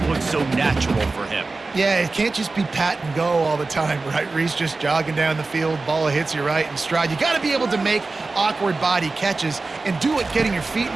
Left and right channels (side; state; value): left; quieter; 3.6 dB